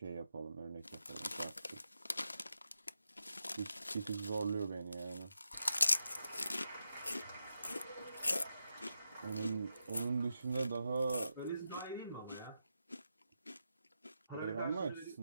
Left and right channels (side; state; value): both; inverted; correlation -0.87